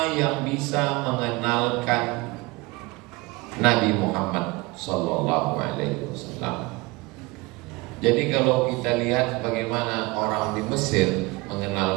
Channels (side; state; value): left; quieter; 23.7 dB